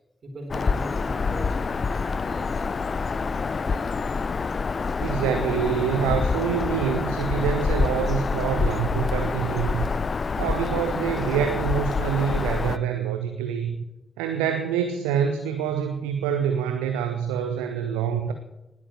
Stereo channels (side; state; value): both; normal; correlation 0.59